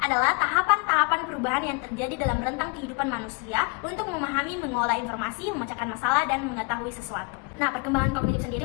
adalah tahapan-tahapan perubahan yang terjadi dalam rentang kehidupan manusia untuk memahami, mengolah informasi, memecahkan masalah, dan mengetahui sesuatu. Nah, perkembangan kognitif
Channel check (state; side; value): quieter; right; 32.0 dB